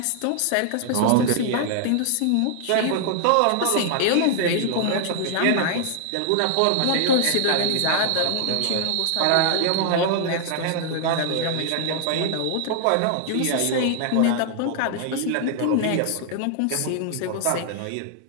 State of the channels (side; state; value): both; different; correlation 0.00